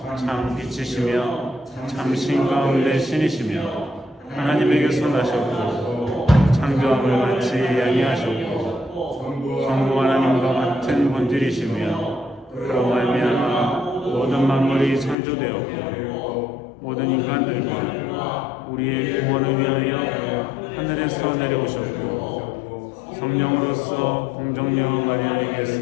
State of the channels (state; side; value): drops out; right; at 15.2 s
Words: 참 빛이시며 참 신 가운데 신이시며 하나님에게서 나셨고 창조함을 같이 양해하셨고 성부 하나님과 같은 본질이시며 그로 말미암아 모든 만물이 창조되었고 모든 인간들과 우리의 구원을 위하여 하늘에서 내려오셨고 성령으로서 공정녀